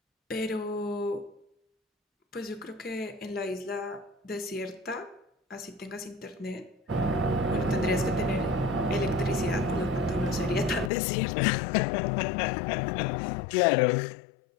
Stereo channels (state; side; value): drops out; right; at 10.9 s